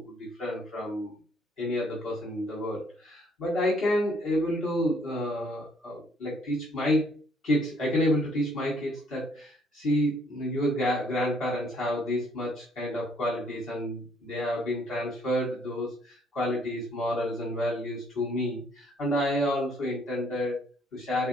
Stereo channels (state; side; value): normal; both; correlation 0.64